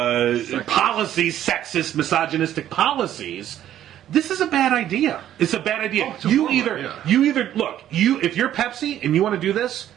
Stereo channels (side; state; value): left; quieter; 11.6 dB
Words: policies, sexist, misogynistic policies. This is a bad idea. It's a bad idea. If you're Pepsi and you want to do this,